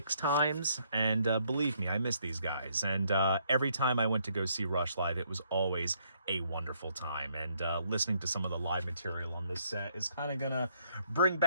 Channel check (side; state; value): both; inverted; correlation -0.70